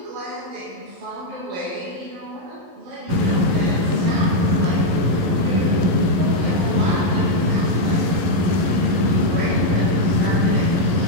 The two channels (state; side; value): late; left; 11 ms